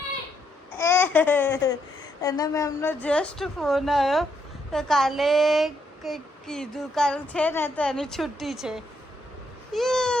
એને મેમનો જસ્ટ ફોન આવ્યો તો કાલે કંઈક કીધું કાલે છે ને તો એની છુટ્ટી છે.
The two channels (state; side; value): normal; both; correlation 0.76